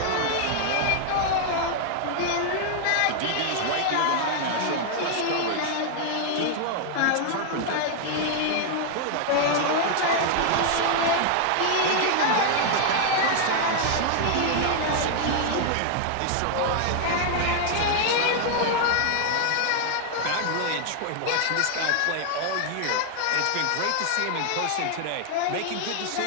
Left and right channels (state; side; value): different; both; correlation 0.00